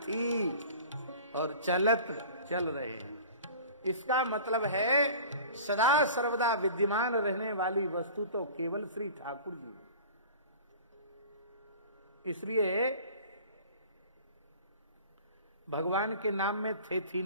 और चलत चल रहे हैं। इसका मतलब है सदा सर्वदा विद्यमान रहने वाली वस्तु तो केवल श्री ठाकुर जी। इसलिए भगवान के नाम में थे थी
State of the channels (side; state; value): both; inverted; correlation -0.42